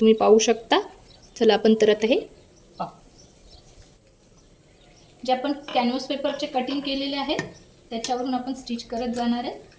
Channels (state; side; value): identical; both; correlation 1.00